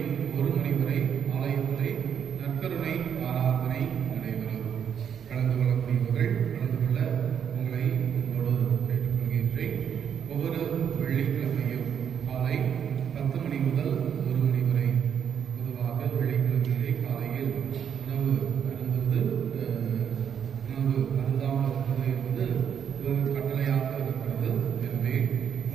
1 மணி வரை ஆலயத்திலே நற்கருணை ஆராதனை நடைபெறும். கலந்து கொள்ளக்கூடியவர்கள் கலந்து கொள்ள உங்களை உங்களோடு கேட்டுக்கொள்கின்றேன். ஒவ்வொரு வெள்ளிக்கிழமையும் காலை 10 மணி முதல் 1 மணி வரை. பொதுவாக வெள்ளிக்கிழமையிலே காலையில் உணவு அருந்தாமல் இருப்பது என்பது ஒரு கட்டளையாக இருக்கிறது. எனவே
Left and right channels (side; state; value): left; quieter; 8.2 dB